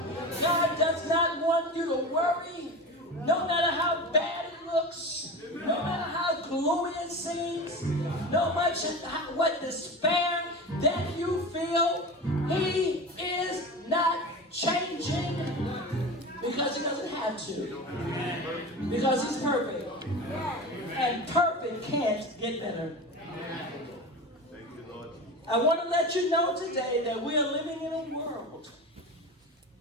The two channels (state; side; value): normal; both; correlation 0.28